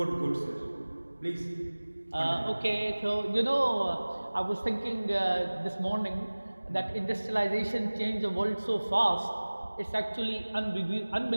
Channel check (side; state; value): both; inverted; correlation -1.00